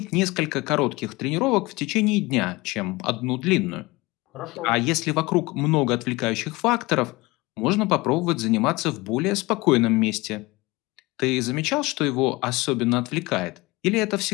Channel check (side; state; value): right; quieter; 22.4 dB